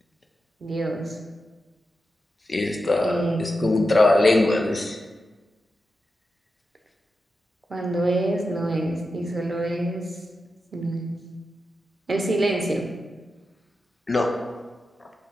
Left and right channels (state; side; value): normal; both; correlation 0.90